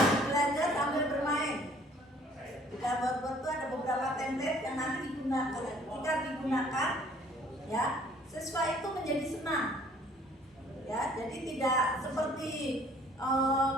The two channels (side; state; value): both; normal; correlation 0.57